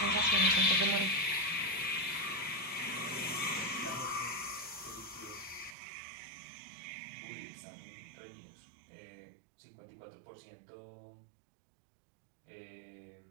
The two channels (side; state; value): left; drops out; at 5.8 s